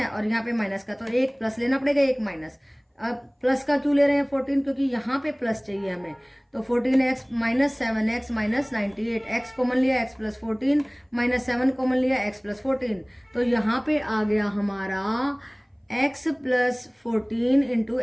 और यहाँ पे माइनस का, तो एक प्लस लेना पड़ेगा एक माइनस। अब प्लस का क्यों ले रहे हैं 14, क्योंकि यहाँ पे प्लस चाहिए हमें, तो 14x minus 7x minus 98, x common लिया x प्लस 14 माइनस 7 कॉमन लिया x प्लस 14, तो यहाँ पे आ गया हमारा x plus 14 into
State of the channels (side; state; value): both; identical; correlation 1.00